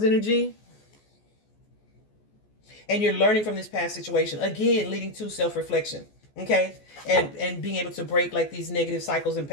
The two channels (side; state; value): right; late; 14 ms